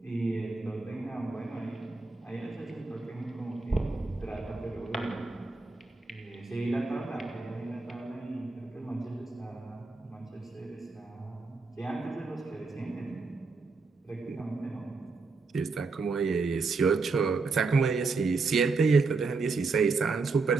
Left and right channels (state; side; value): quieter; left; 4.1 dB